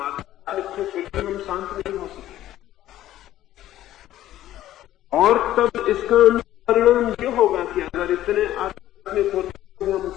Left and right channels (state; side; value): quieter; right; 13.5 dB